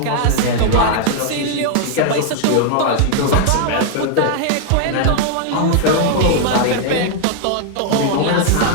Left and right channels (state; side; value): different; both; correlation 0.00